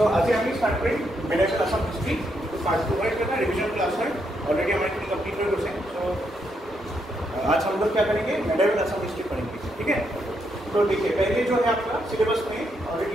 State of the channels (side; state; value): both; normal; correlation 0.78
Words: आज আমি স্টার্ট করি মেডিকেল আসাম হিস্ট্রি पार्ट 2 का रिवीजन क्लास है ऑलरेडी हमारी पूरी कंप्लीट हो गई है। सो आज हम लोग क्या करेंगे मेडिकेल आसाम हिस्ट्री पढ़ेंगे, ठीक है। तो देखिए पहले जो है आपका सिलेबस में already